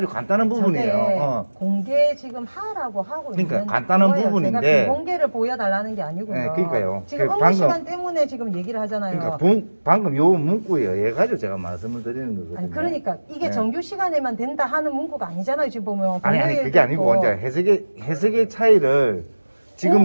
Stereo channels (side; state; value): both; inverted; correlation -1.00